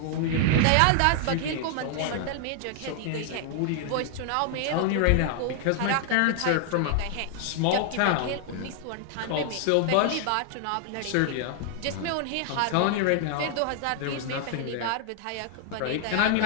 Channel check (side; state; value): both; different; correlation 0.00